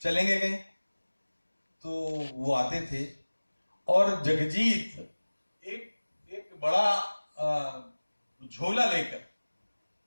चलेंगे कहीं। तो वो आते थे और जगजीत एक बड़ा झोला लेकर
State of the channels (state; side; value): inverted; both; correlation -1.00